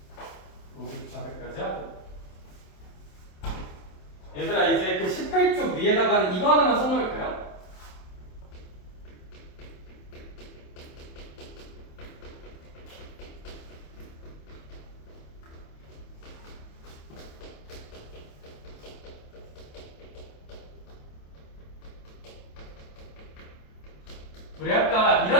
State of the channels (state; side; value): late; right; 27 ms